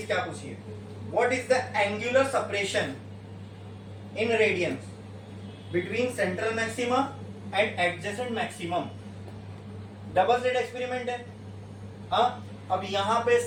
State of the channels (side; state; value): both; identical; correlation 1.00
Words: क्या पूछी है, what is the angular separation in radians between central maxima and adjacent maximum? Double slit experiment है। हाँ, अब यहाँ पे